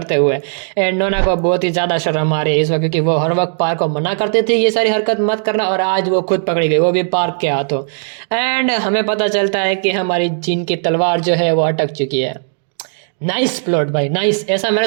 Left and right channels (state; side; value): silent; left; digital silence